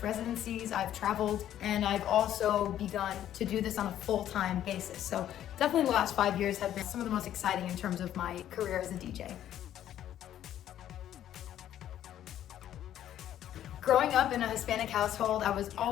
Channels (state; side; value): quieter; right; 11.4 dB